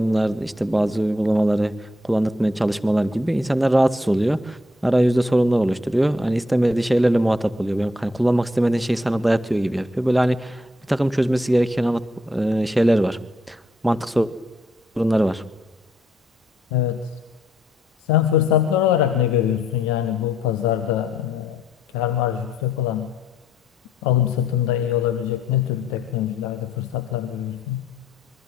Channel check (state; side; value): normal; both; correlation 0.72